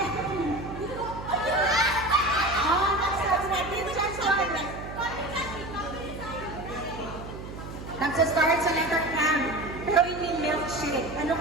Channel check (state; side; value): noise; right; hum, 11 dB below the sound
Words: Nagsasabi natin dyan sa mga. Nagsastart sa letter M. Pero hindi milkshake. Ano